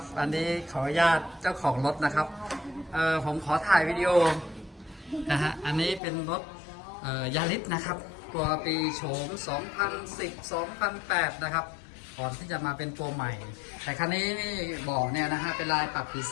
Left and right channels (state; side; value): drops out; right; at 6.0 s